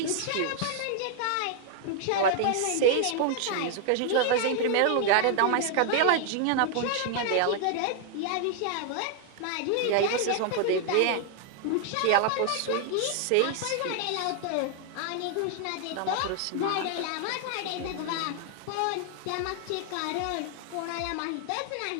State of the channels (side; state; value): both; different; correlation 0.00